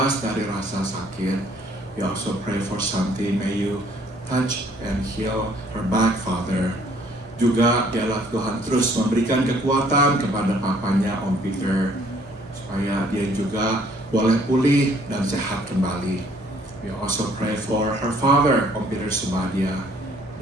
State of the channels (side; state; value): both; normal; correlation 0.61